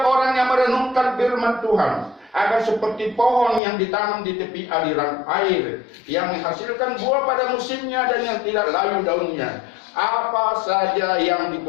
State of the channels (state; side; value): drops out; right; at 3.6 s